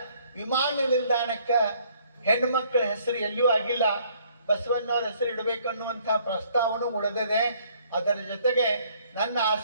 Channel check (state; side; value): inverted; both; correlation -0.63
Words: ವಿಮಾನ ನಿಲ್ದಾಣಕ್ಕೆ ಹೆಣ್ಮಕ್ಳ ಹೆಸರು ಎಲ್ಲಿಯೂ ಆಗಿಲ್ಲ. ಬಸವಣ್ಣವ್ರ ಹೆಸರು ಇಡಬೇಕು ಅನ್ನುವಂಥ ಪ್ರಸ್ತಾವನೂ ಉಳಿದಿದೆ. ಅದರ ಜೊತೆಗೆ ನನ್ನ